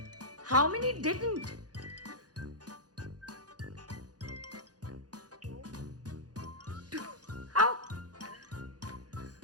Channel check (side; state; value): left; late; 0.68 ms